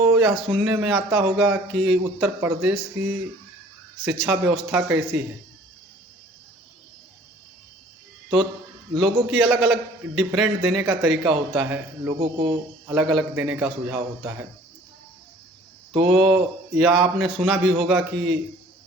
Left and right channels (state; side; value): normal; both; correlation 0.52